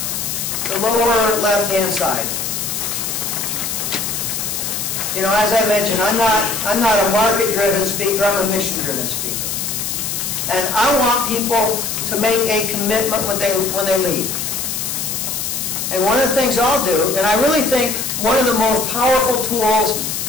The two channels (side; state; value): left; noise; hiss, 3 dB below the sound